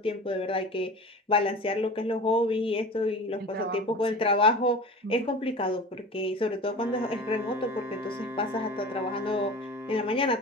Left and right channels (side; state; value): both; normal; correlation 0.35